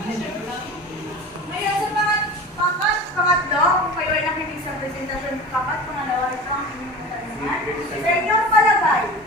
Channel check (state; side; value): normal; both; correlation 0.34